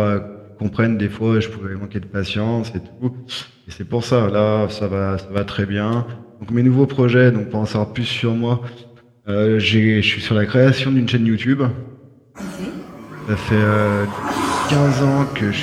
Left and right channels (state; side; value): identical; both; correlation 1.00